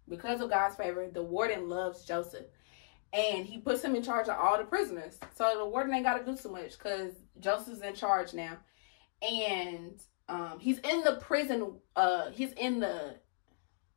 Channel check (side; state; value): right; silent; digital silence